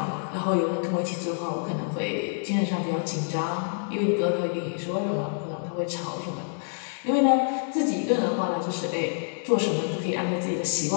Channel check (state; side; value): silent; right; digital silence